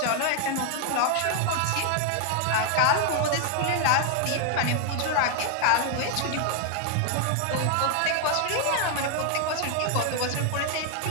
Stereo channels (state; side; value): different; both; correlation 0.00